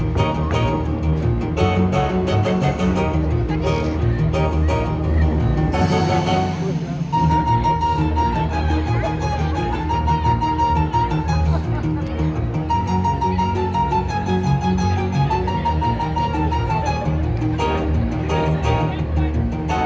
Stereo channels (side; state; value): both; identical; correlation 1.00